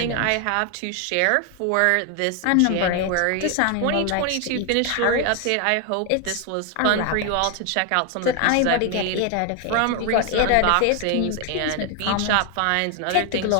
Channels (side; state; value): both; different; correlation 0.01